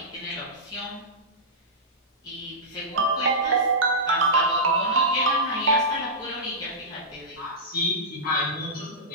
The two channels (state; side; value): normal; both; correlation -0.14